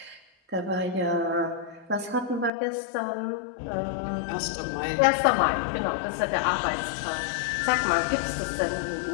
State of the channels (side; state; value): right; drops out; at 2.5 s